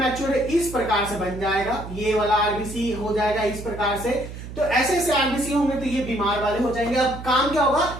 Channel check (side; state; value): right; noise; hum, 11 dB below the sound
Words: इस प्रकार से बन जाएगा, ये वाला आरबीसी हो जाएगा इस प्रकार से। तो ऐसे ऐसे आरबीसी होंगे तो ये बीमार वाले हो जाएंगे। अब काम क्या होगा,